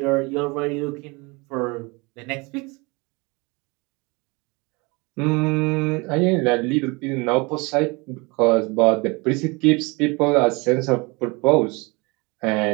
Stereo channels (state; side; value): quieter; left; 27.0 dB